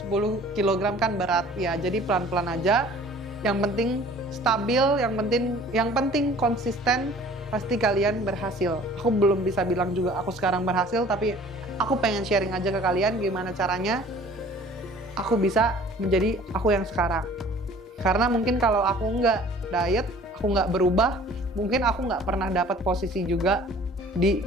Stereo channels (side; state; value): both; normal; correlation 0.50